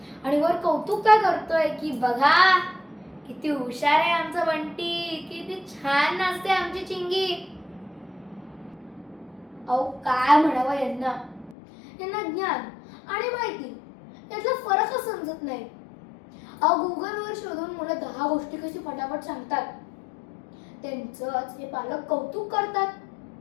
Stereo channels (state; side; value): drops out; right; at 11.6 s